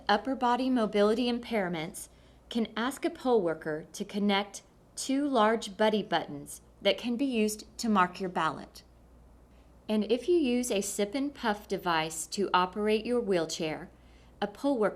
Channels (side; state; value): both; identical; correlation 1.00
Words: upper body mobility impairments can ask a poll worker to connect 2 large buddy buttons that can be used to mark your ballot. And if you use a sip and puff device to operate your wheelchair, a poll